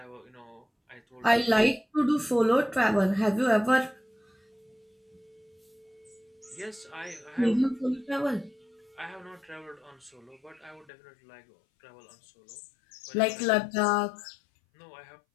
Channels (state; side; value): drops out; right; at 10.9 s